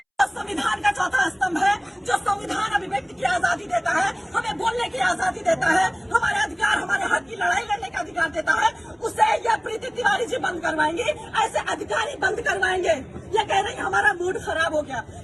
संविधान का चौथा स्तंभ है, जो संविधान अभिव्यक्ति की आजादी देता है, हमें बोलने की आजादी देता है, हमारे अधिकार, हमारे हक की लड़ाई लड़ने का अधिकार देता है। उसे यह प्रीति तिवारी जी बंद करवाएंगे, ऐसे अधिकारी बंद करवाएंगे। ये कह रही हमारा मूड खराब हो गया।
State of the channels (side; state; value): both; identical; correlation 1.00